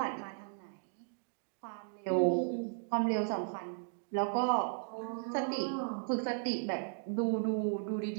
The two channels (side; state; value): left; silent; digital silence